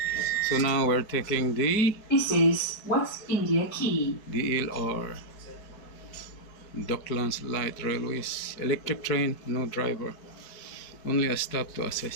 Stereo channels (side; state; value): right; late; 4.6 ms